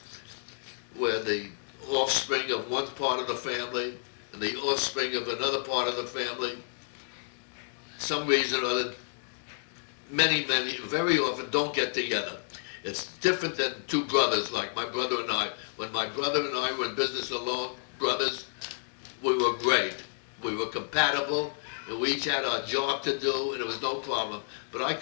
where the offspring of one part of the family and the offspring of another part of the family. Some reason or other, many, very often don't get together. It's different than two brothers, like my brother and I. When my brother and I were in business alone, brothers, we were great. We were compatible, and we each had our job to do, and it was no problem. But I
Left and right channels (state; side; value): silent; right; digital silence